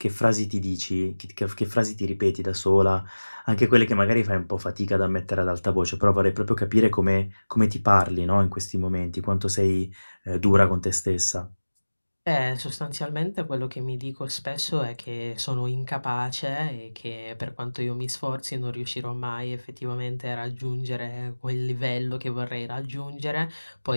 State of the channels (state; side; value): inverted; both; correlation -1.00